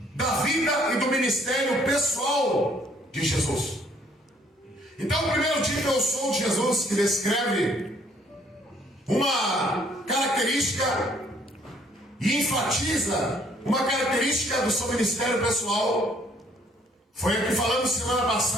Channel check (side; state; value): both; normal; correlation 0.63